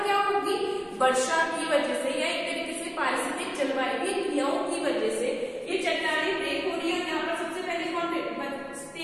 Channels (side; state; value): both; identical; correlation 1.00